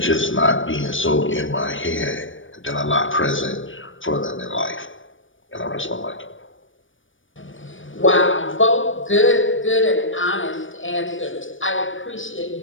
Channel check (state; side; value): late; right; 0.57 ms